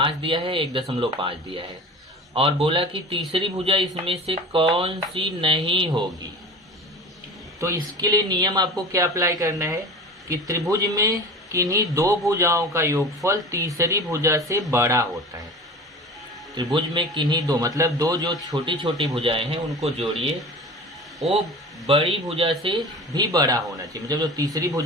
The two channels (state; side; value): normal; both; correlation 0.35